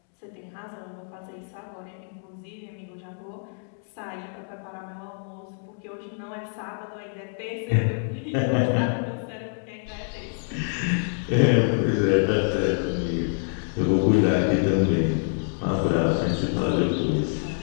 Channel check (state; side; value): silent; right; 60 dB below the other